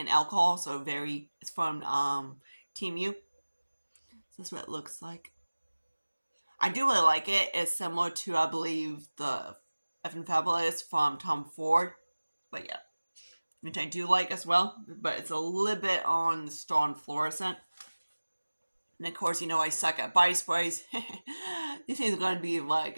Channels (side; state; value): both; inverted; correlation -1.00